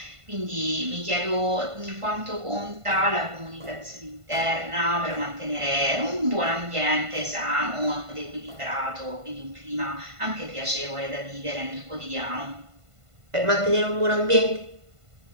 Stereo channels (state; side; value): late; left; 1.5 ms